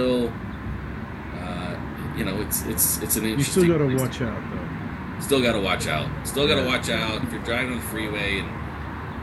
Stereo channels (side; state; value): both; identical; correlation 1.00